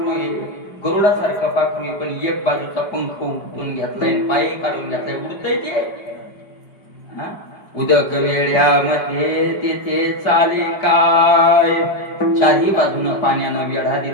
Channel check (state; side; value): late; right; 4.9 ms